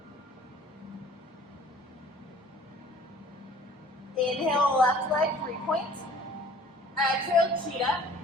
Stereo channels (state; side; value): normal; both; correlation 0.51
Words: Inhale, left leg, 3-point. Exhale, cheetah.